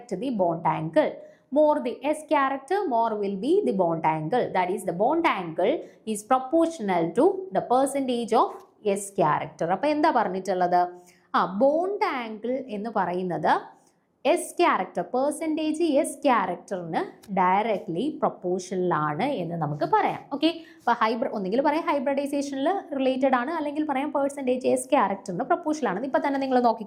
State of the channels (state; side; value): identical; both; correlation 1.00